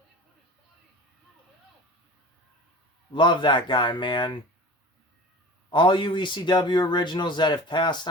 Love that guy, man. All you ECW originals that have passed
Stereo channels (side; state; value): both; normal; correlation 0.37